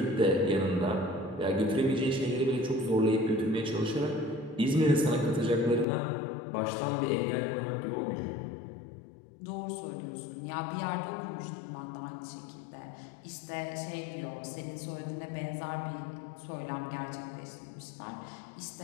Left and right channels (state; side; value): drops out; right; at 5.9 s